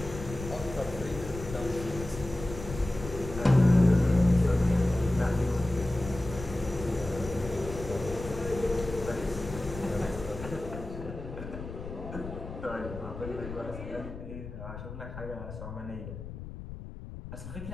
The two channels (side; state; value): left; noise; rumble, 10 dB below the sound